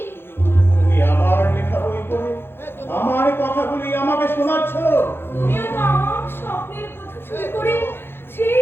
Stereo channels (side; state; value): right; late; 0.11 ms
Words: তুমি আমার লেখা বই পড়ে আমার কথাগুলি আমাকে শোনাচ্ছ। তুমিও তো আমার স্বপ্নের কথা শুরু করে সেই